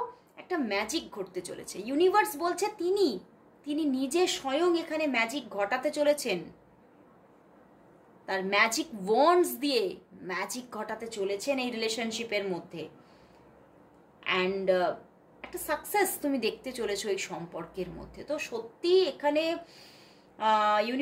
একটা ম্যাজিক ঘটতে চলেছে। ইউনিভার্স বলছে তিনি নিজে স্বয়ং এখানে ম্যাজিক ঘটাতে চলেছেন, তার ম্যাজিক ওয়ান্ডস দিয়ে ম্যাজিক ঘটাতে চলেছেন এই রিলেশনশিপের মধ্যে। অ্যান্ড একটা সাকসেস তুমি দেখতে চলেছো এই সম্পর্কের মধ্যে। তো সত্যি এখানে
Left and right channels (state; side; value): identical; both; correlation 1.00